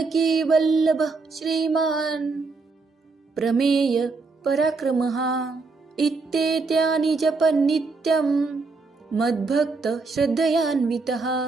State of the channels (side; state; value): left; quieter; 4.1 dB